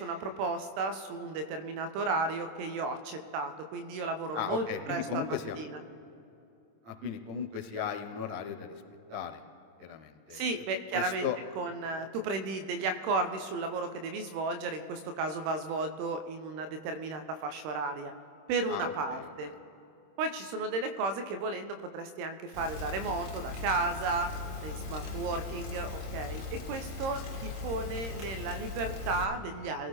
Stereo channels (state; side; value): late; left; 26 ms